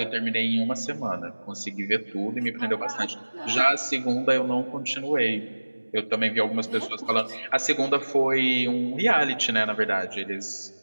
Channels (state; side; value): inverted; both; correlation -1.00